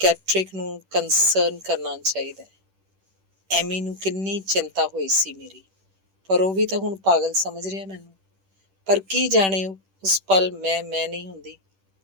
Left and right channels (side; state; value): left; late; 10 ms